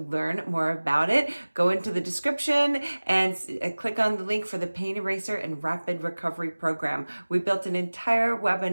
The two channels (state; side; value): inverted; both; correlation -1.00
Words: more about it, go into the description and click on the link for the Pain Eraser and Rapid Recovery Program. We built an entire